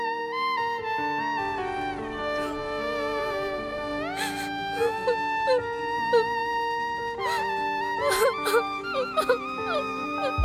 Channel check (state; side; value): identical; both; correlation 1.00